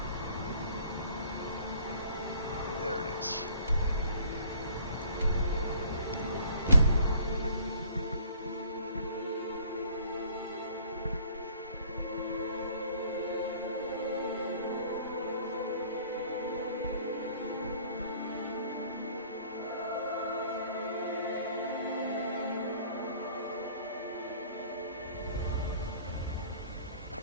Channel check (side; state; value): both; inverted; correlation -0.55